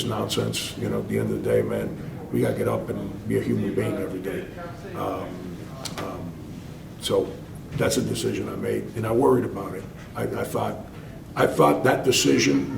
nonsense. You know, at the end of the day, man, we gotta get up and be a human being every day. So that's a decision I made, and I worried about it. I thought that decision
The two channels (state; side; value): identical; both; correlation 1.00